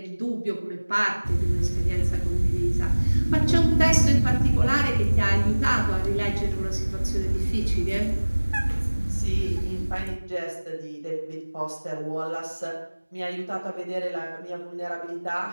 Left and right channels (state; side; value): inverted; both; correlation -1.00